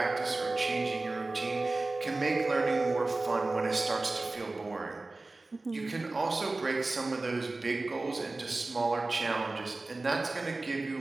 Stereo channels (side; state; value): left; quieter; 3.2 dB